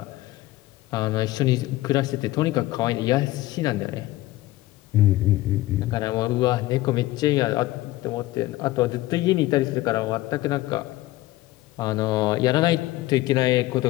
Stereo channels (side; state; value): right; quieter; 17.4 dB